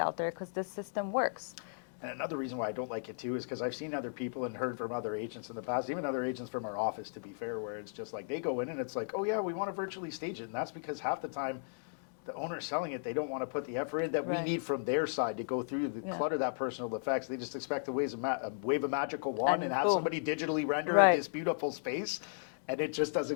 there, because this system works. And another reason why I don't like it too is because I've seen other people and heard from other agents in the past, even other agents from our office, to be fair, where it's just like they go in and it's like, oh yeah, we want to virtually stage it, and that's because half the time the owner selling it, they don't want to put the effort in that we need from their side to go through the clutter, that personal effects. They just expect to wave a magical wand and have somebody digitally render this beautiful space, and it just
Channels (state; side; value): silent; right; digital silence